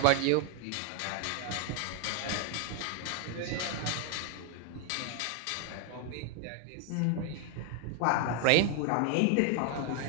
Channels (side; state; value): both; different; correlation 0.00